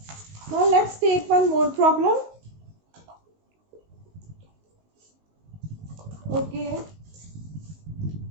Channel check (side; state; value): left; late; 19 ms